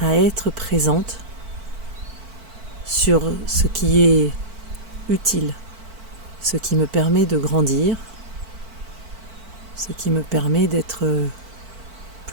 à être présente sur ce qui est utile, ce qui me permet de grandir, ce qui me permet d'être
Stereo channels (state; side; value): late; left; 4.5 ms